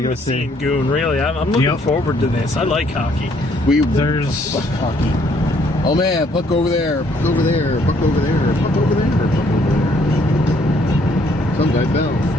with see? seeing Goon, really. I'm looking forward to this. I like hockey. There's hockey. Oh man, puck over there, puck over there, puck over there, puck over there, puck over there. Some guy fell.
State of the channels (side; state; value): both; normal; correlation 0.66